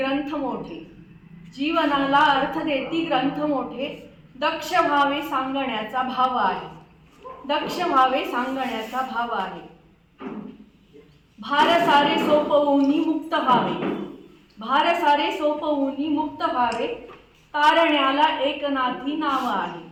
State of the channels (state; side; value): identical; both; correlation 1.00